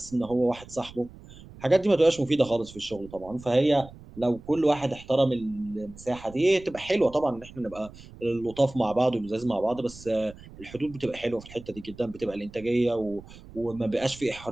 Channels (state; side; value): noise; right; rumble, 19 dB below the sound